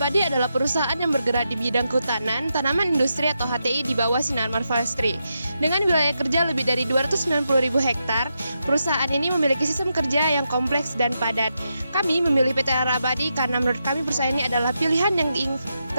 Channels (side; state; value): both; inverted; correlation -0.85